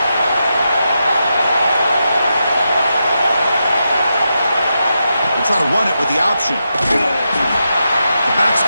Try to run it with the option. The back's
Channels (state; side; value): inverted; both; correlation -0.86